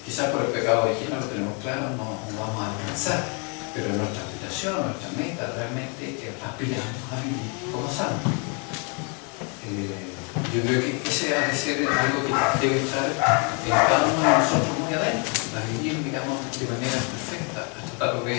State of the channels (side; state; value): right; quieter; 35.9 dB